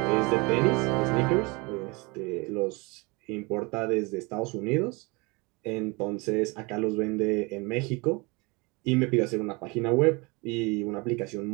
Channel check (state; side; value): quieter; left; 27.2 dB